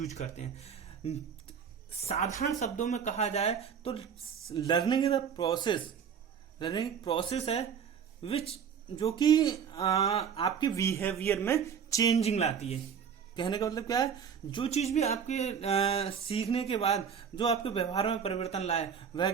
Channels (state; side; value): quieter; left; 7.3 dB